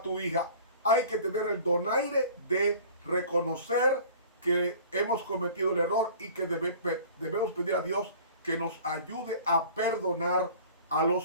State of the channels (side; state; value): both; inverted; correlation -0.45